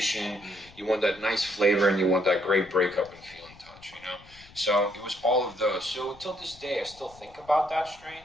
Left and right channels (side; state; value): left; noise; rumble, 23 dB below the sound